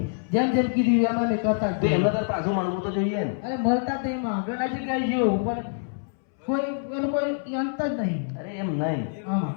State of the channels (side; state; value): right; silent; 61 dB below the other